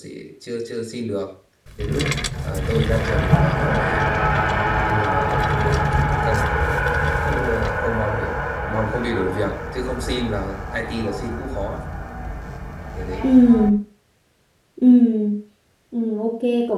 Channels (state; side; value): identical; both; correlation 1.00